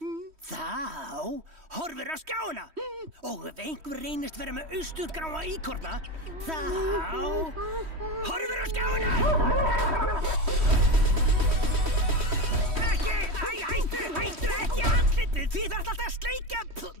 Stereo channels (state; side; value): late; left; 3.1 ms